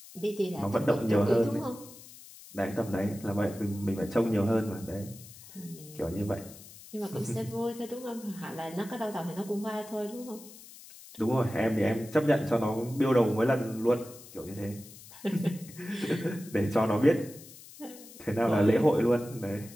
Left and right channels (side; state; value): left; noise; hiss, 18 dB below the sound